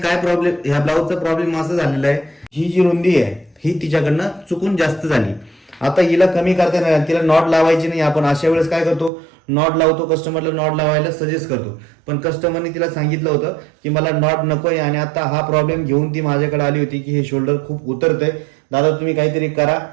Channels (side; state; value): left; drops out; at 9.1 s